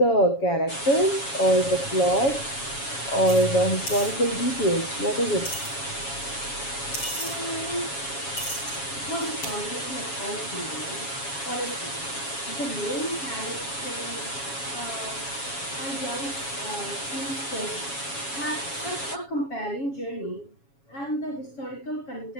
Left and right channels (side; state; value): right; late; 7.2 ms